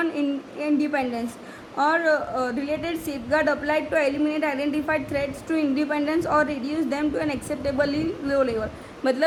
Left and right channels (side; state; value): both; identical; correlation 1.00